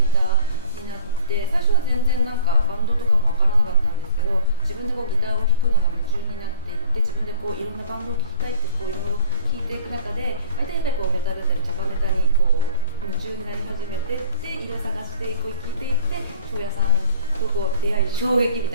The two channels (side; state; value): both; inverted; correlation -0.47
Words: ターになって、最初は全然バンドとかもわからなかったんですけど、自分でギターを弾くのが夢中になっていって、自分でいろんなバンドを聴きたいっていろいろ聴いていく中で、大体やっぱりメタルだったりチャカメタに夢中になり始めてっていろいろ探して聴いていって、庄屋さんと出会い衝撃み